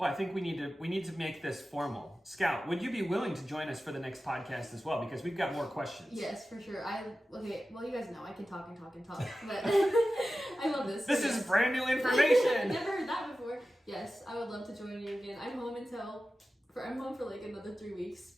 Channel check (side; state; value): both; normal; correlation 0.94